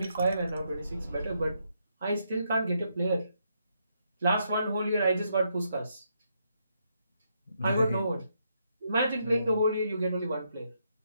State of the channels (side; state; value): both; inverted; correlation -0.78